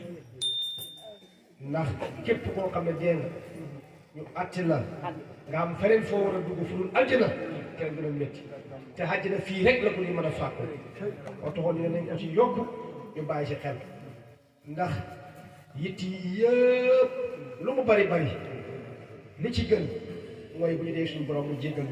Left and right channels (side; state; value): both; identical; correlation 1.00